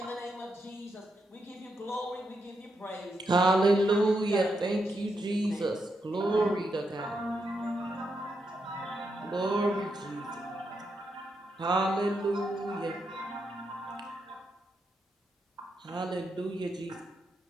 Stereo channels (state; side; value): normal; both; correlation 0.82